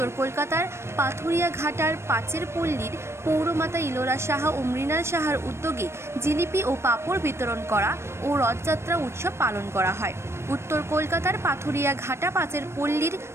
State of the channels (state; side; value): late; left; 0.13 ms